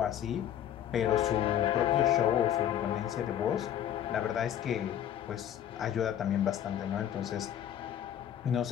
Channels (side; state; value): right; quieter; 10.4 dB